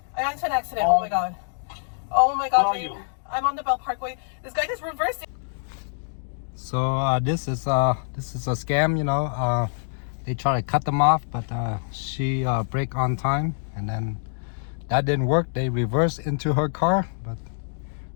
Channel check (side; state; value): right; silent; digital silence